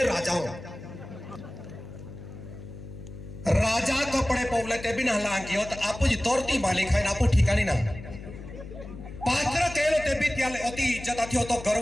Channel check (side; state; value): left; noise; hum, 13 dB below the sound